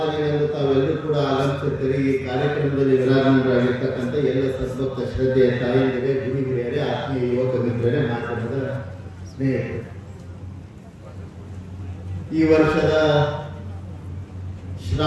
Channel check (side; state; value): both; identical; correlation 1.00